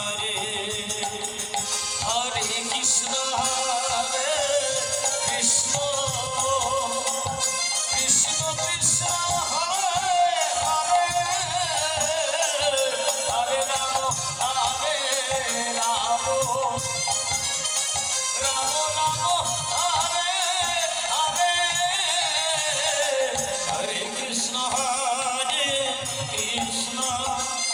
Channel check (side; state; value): both; identical; correlation 1.00